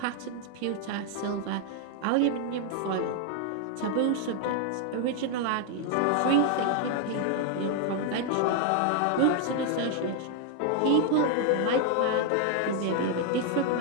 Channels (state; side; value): different; both; correlation 0.00